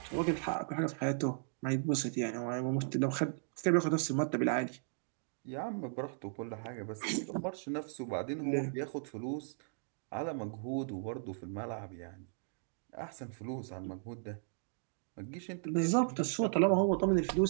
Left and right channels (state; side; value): silent; left; digital silence